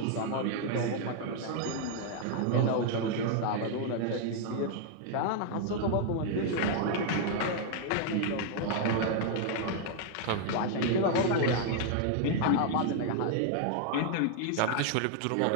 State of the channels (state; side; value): different; both; correlation 0.00